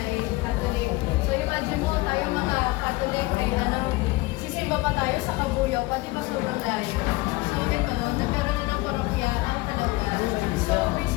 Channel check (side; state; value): right; quieter; 21.0 dB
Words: Catholic. So imagine mo, tayo mga Catholic ay sisimba pa tayo sa Kabuyaw, pati pa sobrang layo. So ito, nagkaroon din ng parokya ang Kalamba. So